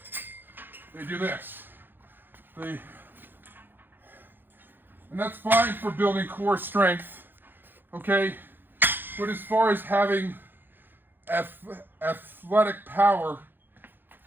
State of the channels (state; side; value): late; left; 0.096 ms